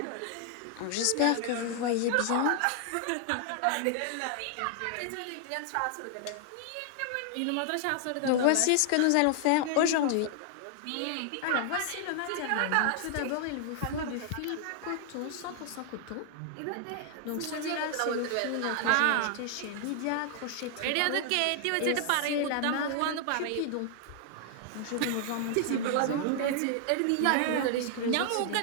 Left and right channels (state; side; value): different; both; correlation 0.00